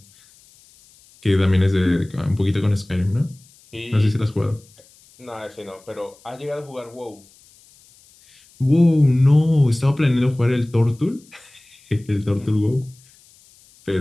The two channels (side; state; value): left; noise; hiss, 28 dB below the sound